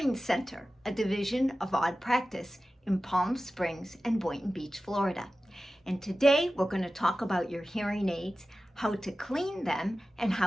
Center, a division of Odd Practice in Palm Springs and Boynton Beach, Florida. And today we're going to talk about your hearing aids, how to clean them, and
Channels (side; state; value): both; normal; correlation 0.95